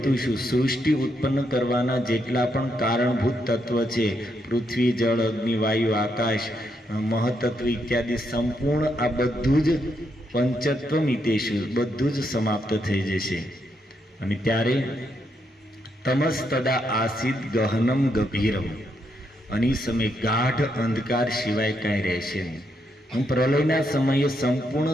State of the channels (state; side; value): normal; both; correlation 0.78